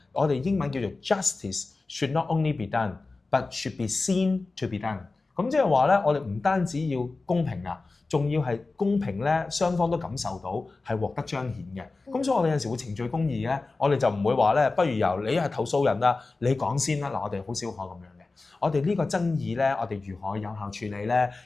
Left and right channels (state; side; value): quieter; right; 3.6 dB